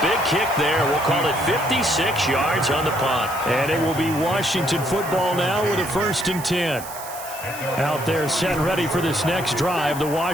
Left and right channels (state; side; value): noise; right; hiss, 13 dB below the sound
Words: big kick there. We'll call it 56 yards on the punt. And it will be Washington football now with a 1st and 10. Out there set ready for this next drive, the